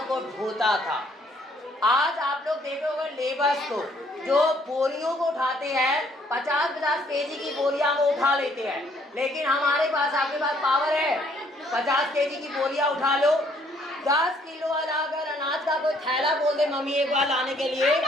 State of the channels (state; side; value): normal; both; correlation 0.65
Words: को ढोता था। आज आप लोग देखोगे लेबर्स को जो बोरियों को उठाते हैं, 50-50 केजी की बोरियां वो उठा लेते हैं, लेकिन हमारे पास, आपके पास पावर है 50 केजी की बोरियां उठा लो। 10 किलो वाला अगर अनाज का कोई थैला बोल दे मम्मी एक बार लाने के लिए,